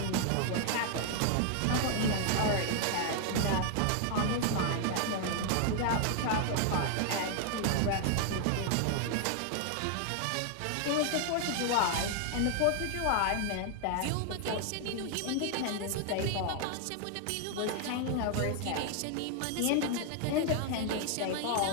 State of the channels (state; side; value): different; both; correlation 0.00